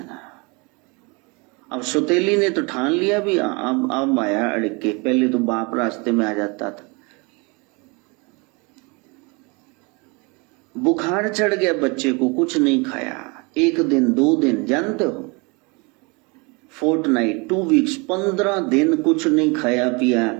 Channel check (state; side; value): quieter; left; 29.3 dB